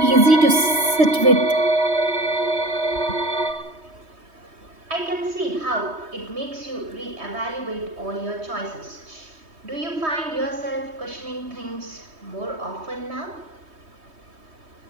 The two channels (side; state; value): left; late; 3.2 ms